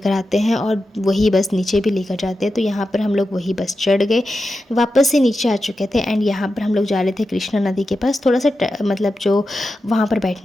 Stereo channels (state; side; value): normal; both; correlation 0.90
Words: आते हैं और वही बस नीचे भी लेकर जाते हैं, तो यहाँ पर हम लोग वही बस चढ़ गए, वापस से नीचे आ चुके थे। एंड यहाँ पर हम लोग जा रहे थे कृष्णा नदी के पास थोड़ा सा मतलब जो वहाँ पर